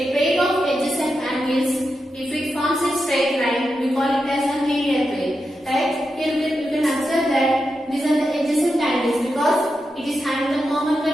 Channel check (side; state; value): both; normal; correlation 0.88